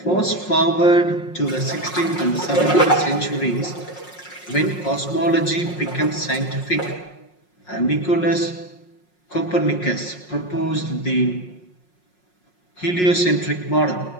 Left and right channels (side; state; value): right; late; 5.5 ms